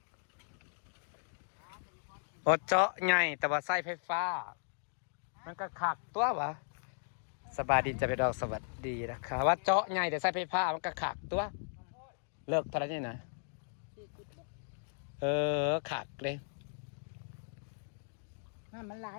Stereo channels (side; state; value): right; silent; digital silence